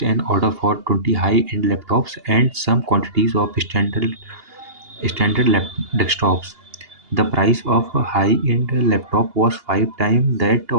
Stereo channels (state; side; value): late; left; 2.8 ms